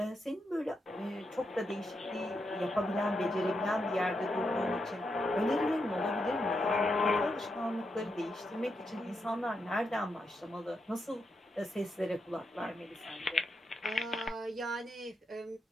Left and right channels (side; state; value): both; normal; correlation 0.84